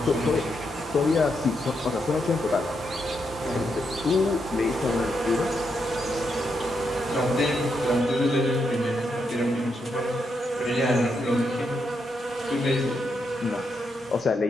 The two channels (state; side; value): normal; both; correlation 0.81